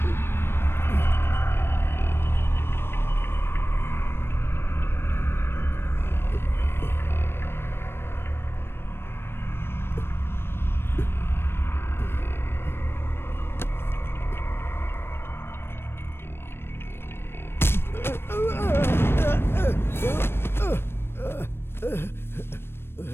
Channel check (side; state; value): right; late; 0.12 ms